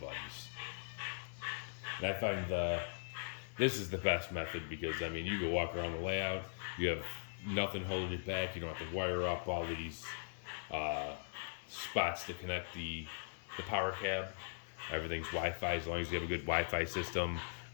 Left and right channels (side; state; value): right; silent; digital silence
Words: And I find this is the best method because, I mean, you can walk around the layout. You have nothing holding you back. You don't have to wire up all these spots to connect the power cab. Everything's Wi-Fi. As long as you have a good Wi-Fi system,